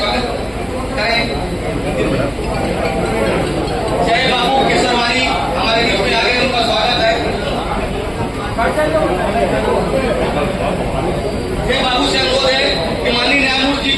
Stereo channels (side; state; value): both; identical; correlation 1.00